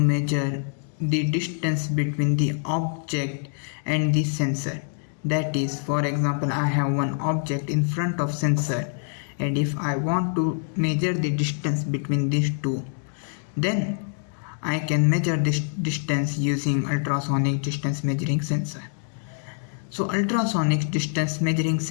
the distance between the object and the sensor. That is, for example, I have one object in front of sensor, and if I want to measure the distance between these two, then I can measure this distance using ultrasonic distance measuring sensor. So ultrasonic distance measuring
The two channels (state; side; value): silent; right; 60 dB below the other